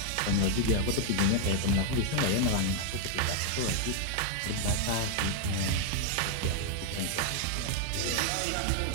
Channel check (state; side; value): different; both; correlation 0.00